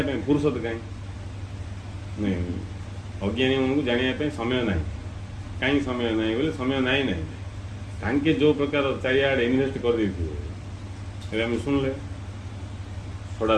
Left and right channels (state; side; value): identical; both; correlation 1.00